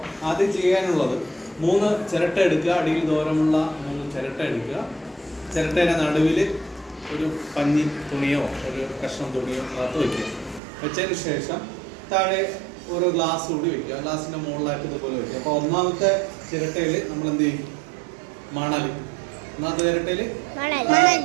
ആദ്യം ചെയ്യാനുള്ളത് 3 ചിരട്ട എടുക്കുക. അടിയിൽ ദൂരമുള്ള 3 ചിരട്ട എടുക്കുക. ചിരട്ടയുടെ നടുവിൽ ഒരു പഞ്ഞി തുണിയോ ഒരു കഷ്ണം തുണിയോ അകത്ത് വയ്ക്കുക. വെച്ചതിന് ശേഷം താഴെ ഓരോ ഗ്ലാസ് കൂടി വയ്ക്കുക. ഗ്ലാസിൻ്റെ മുകളിലായിട്ട് ഇതുപോലെ വയ്ക്കുക. അപ്പോൾ ഒന്നാമത്തെ ചിരട്ടയിൽ നമ്മൾ എന്ത് ചെയ്യും? മണൽ. ഒന്നാമത്തെ ചിരട്ടയിൽ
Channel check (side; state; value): left; drops out; at 10.6 s